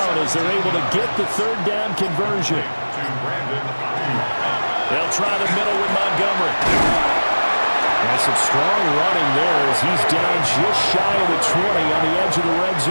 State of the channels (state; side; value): inverted; both; correlation -1.00